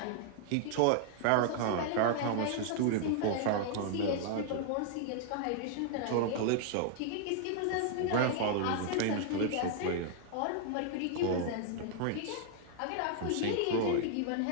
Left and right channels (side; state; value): both; different; correlation 0.00